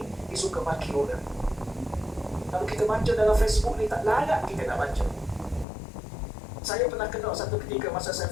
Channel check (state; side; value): drops out; right; at 5.7 s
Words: Dia suka maki orang. Kalau kita baca dalam Facebook ni tak layak kita nak baca. Saya pernah kenal satu ketika masa saya